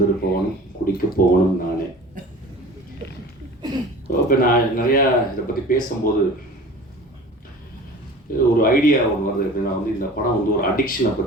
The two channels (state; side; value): normal; both; correlation 0.41